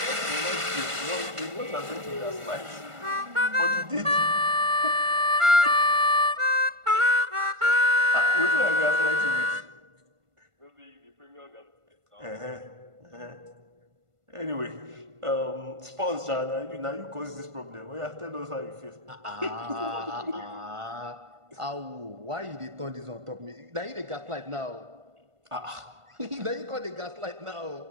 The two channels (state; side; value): late; left; 1.5 ms